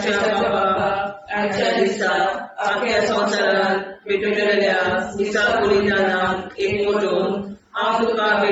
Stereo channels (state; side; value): identical; both; correlation 1.00